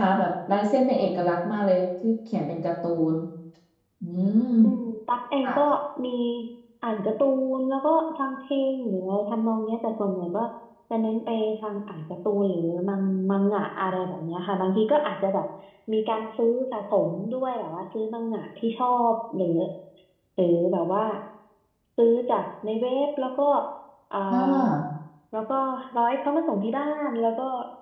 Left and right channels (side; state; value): both; identical; correlation 1.00